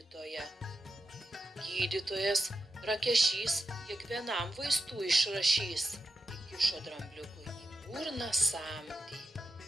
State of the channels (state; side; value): normal; both; correlation 0.89